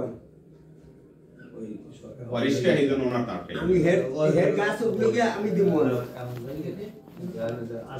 ওয়ারিসকে এই জন্য ওনার তারকে আমি হেড গাছ উপযোগে আমি দিব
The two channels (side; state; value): both; identical; correlation 1.00